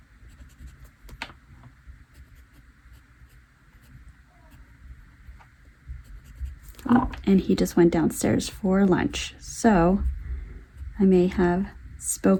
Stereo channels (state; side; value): identical; both; correlation 1.00